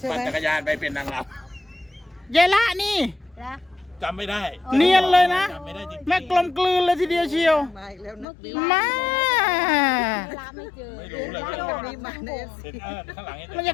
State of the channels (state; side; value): drops out; right; at 8.2 s